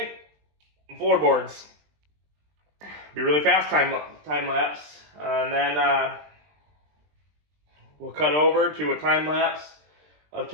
and floorboards. Be really fast time lapse, and then we'll cut over to a time lapse of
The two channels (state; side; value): late; left; 20 ms